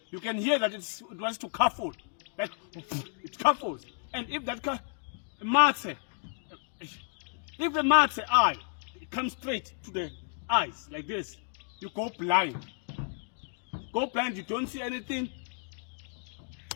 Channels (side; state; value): right; silent; 57 dB below the other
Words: you can hear that it wants to cuffle. Like it cuffles. And if that if the matse eye comes straight to the eyes like this, you go blind. Go blind, you don't see anything.